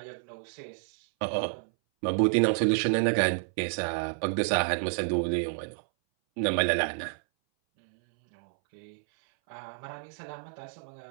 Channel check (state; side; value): silent; left; 58 dB below the other